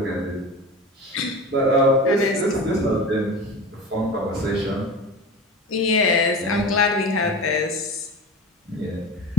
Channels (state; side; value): normal; both; correlation 0.31